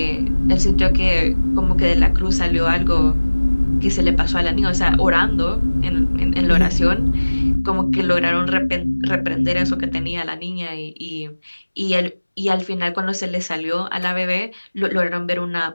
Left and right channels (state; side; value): inverted; both; correlation -1.00